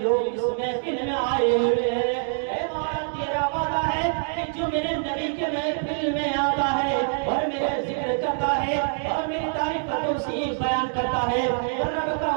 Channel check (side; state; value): left; silent; digital silence